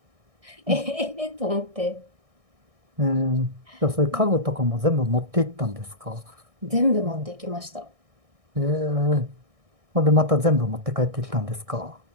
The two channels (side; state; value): left; late; 1.6 ms